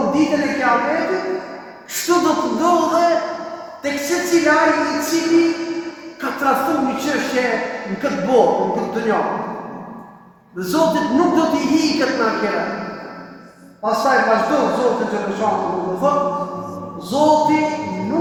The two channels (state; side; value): identical; both; correlation 1.00